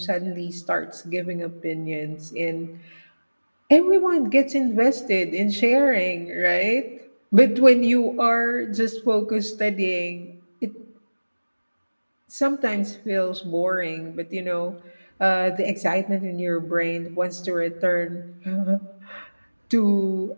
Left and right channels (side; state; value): both; inverted; correlation -1.00